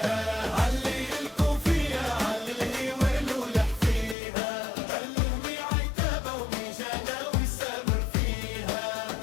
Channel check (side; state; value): right; drops out; at 4.2 s